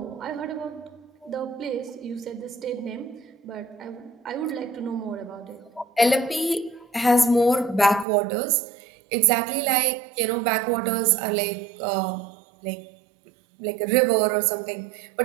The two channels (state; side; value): drops out; left; at 8.1 s